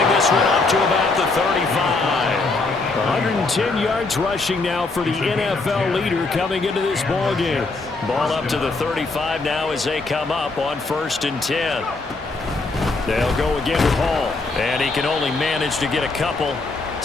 this one up to about the 35. 110 yards rushing now for the NFL leader coming into this ball game. Ball up to the 35 now as they come up on 1st and 10. They'll go again to Hall. And he can only manage to get a couple.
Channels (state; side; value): quieter; right; 3.6 dB